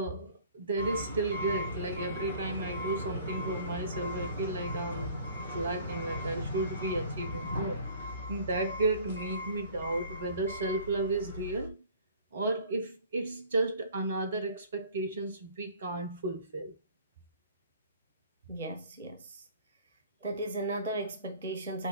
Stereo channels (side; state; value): both; inverted; correlation -0.50